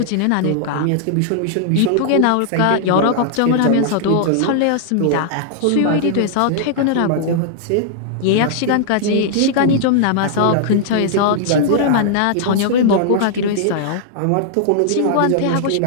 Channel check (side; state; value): both; different; correlation -0.01